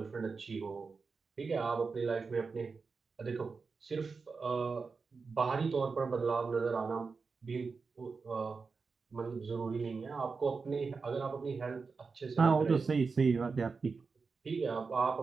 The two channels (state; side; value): quieter; left; 4.7 dB